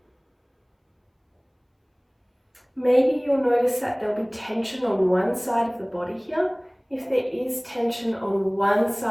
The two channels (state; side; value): identical; both; correlation 1.00